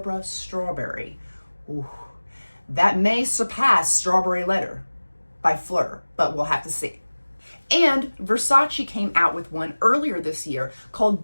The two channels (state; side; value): inverted; both; correlation -1.00